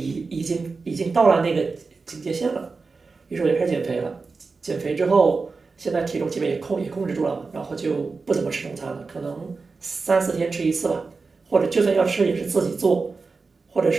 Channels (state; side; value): quieter; left; 4.3 dB